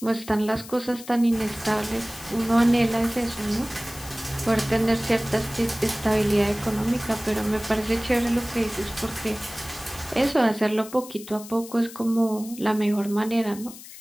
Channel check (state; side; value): noise; left; hiss, 16 dB below the sound